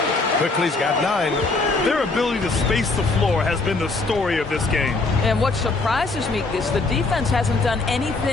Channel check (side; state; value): right; quieter; 3.5 dB